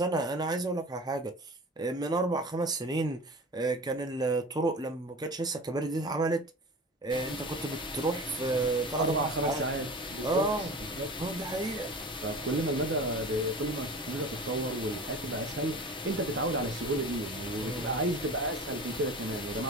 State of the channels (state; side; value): normal; both; correlation 0.36